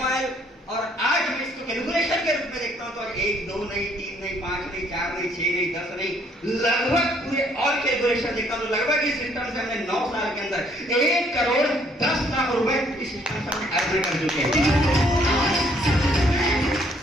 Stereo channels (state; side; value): normal; both; correlation 0.65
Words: और आज मैं इसको कैलकुलेशन के रूप में देखता हूँ तो आज 1, 2 नहीं, 3 नहीं, 5 नहीं, 4 नहीं, 6 नहीं, 10 नहीं, लगभग पूरे और कैलकुलेशन देखता हूँ तो लगभग इस सिस्टम से हमने 9 साल के अंदर 1,10,00,000 रुपए इस सिस्टम से हमने अर्जन कर चुके हैं।